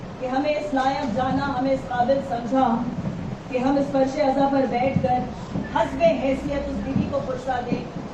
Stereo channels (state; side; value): identical; both; correlation 1.00